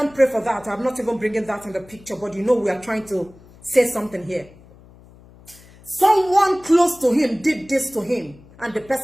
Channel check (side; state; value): left; noise; hum, 24 dB below the sound